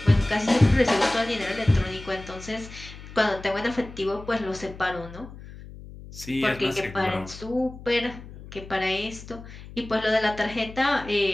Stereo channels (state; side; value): noise; left; hum, 15 dB below the sound